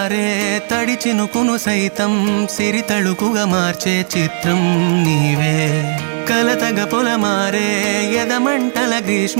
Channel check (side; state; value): left; silent; digital silence